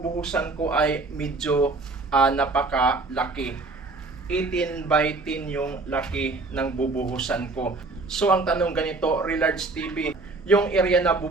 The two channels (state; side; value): quieter; left; 3.5 dB